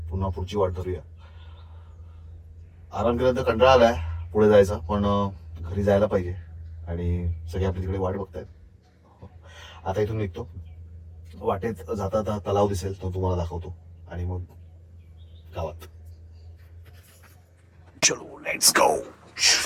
पुन्हा पुढची वाट धरूया. आराम केल्यानंतर कंटाळा आलाय पुढे जायचा, पण घरी जायला पाहिजे आणि सगळे आपली तिकडे वाट बघतायत. आता इथून निघतो. वाटेत जाता जाता तलाव दिसेल तो तुम्हाला दाखवतो आणि मग गावात. चलो लेट्स गो.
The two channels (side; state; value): both; identical; correlation 1.00